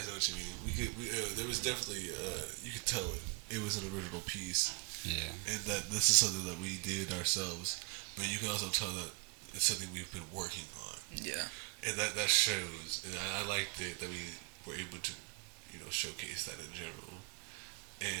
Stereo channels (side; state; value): left; quieter; 34.2 dB